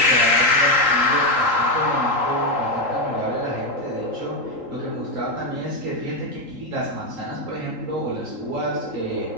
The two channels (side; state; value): left; late; 3.8 ms